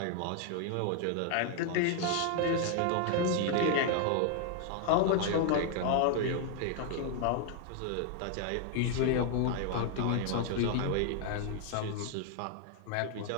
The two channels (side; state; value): both; different; correlation 0.00